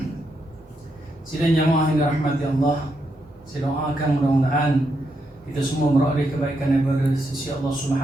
Sidang jamaah yang dirahmati Allah, saya doakan mudah-mudahan kita semua beroleh kebaikan daripada sisi Allah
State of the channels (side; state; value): both; normal; correlation 0.81